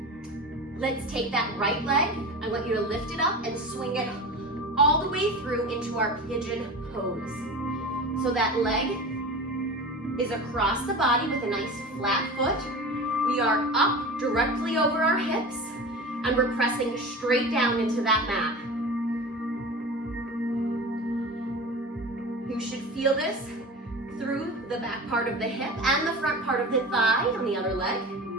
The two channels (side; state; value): both; normal; correlation 0.32